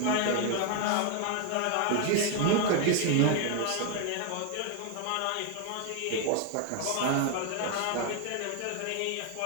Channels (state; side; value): different; both; correlation 0.01